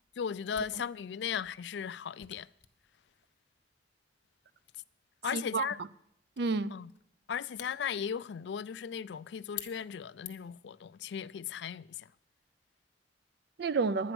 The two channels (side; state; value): both; normal; correlation 0.05